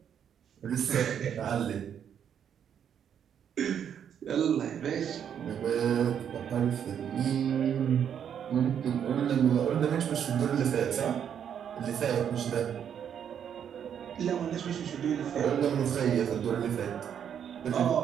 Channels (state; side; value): quieter; left; 8.6 dB